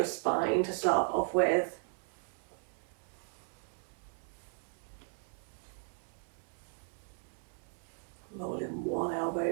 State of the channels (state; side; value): silent; left; 53 dB below the other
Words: spine to start off with. Rolling one elbow